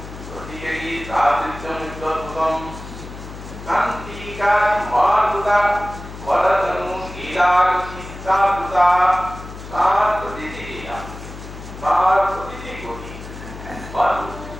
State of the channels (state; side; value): noise; left; hum, 13 dB below the sound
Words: রতিকেরি সাধুত্যমুত্তরগতম কান্তিকা মহাদ্ভুতা বরদনু লীলাগতি সাধুতা তার প্রতিটি লীলা, তার প্রতিটি গতি